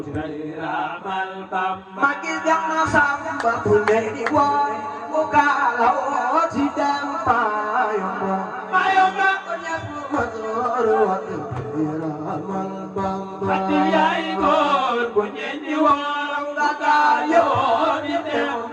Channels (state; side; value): identical; both; correlation 1.00